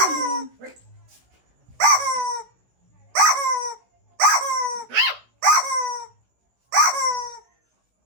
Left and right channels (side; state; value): left; late; 16 ms